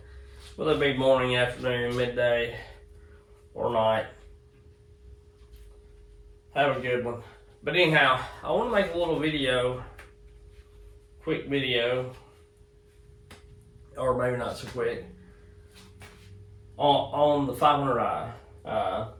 Whether it be morning, afternoon, midday, or night. Have a good one. But anyhow, I want to make a little video, quick video, or maybe not so quick, on the 500i.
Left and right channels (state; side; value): identical; both; correlation 1.00